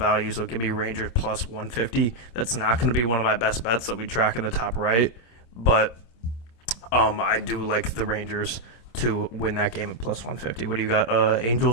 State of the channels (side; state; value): right; late; 26 ms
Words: so give me Rangers plus 150. That's not going to be one of my best bets that we track in the top right, but I do like the Rangers to win that game at plus 150. What do you got?